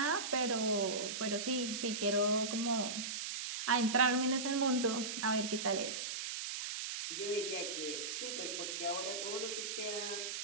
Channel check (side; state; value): right; noise; hiss, 4 dB below the sound